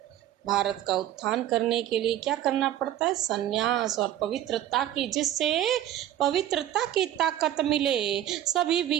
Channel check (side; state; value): left; quieter; 12.3 dB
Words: भारत का उत्थान करने के लिए क्या करना पड़ता है? सन्यास और पवित्रता की, जिससे पवित्रता की ताकत मिले। सभी